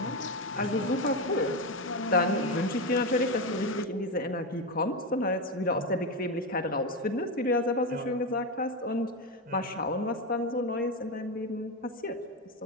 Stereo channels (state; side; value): normal; both; correlation 0.13